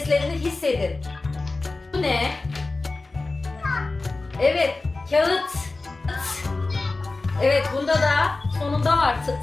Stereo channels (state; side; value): quieter; right; 3.4 dB